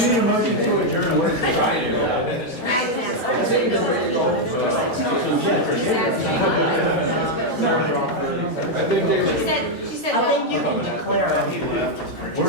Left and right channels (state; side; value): normal; both; correlation 0.01